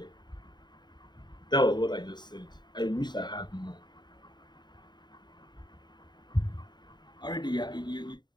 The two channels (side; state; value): right; late; 0.21 ms